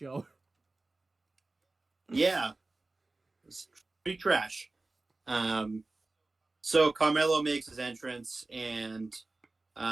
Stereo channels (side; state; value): left; quieter; 3.2 dB